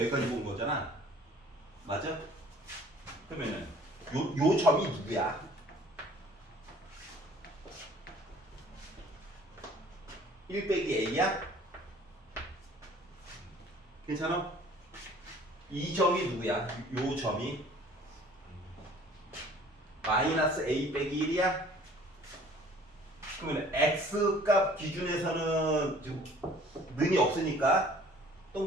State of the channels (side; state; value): both; normal; correlation 0.52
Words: 본 거잖아. 맞아? 그러면은 요 점이 누구야? 1 빼기 A야? 괜찮아? 이 점이 누구야? 요 점이 마이너스 A 빼기 1이야? 그러면 X 값 기준에서는 지금 는이 없으니까